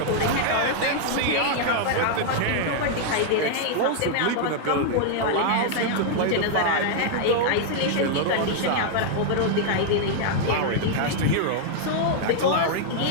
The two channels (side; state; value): both; different; correlation -0.01